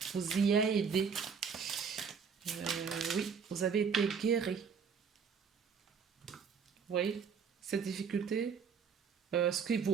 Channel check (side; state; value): left; quieter; 6.3 dB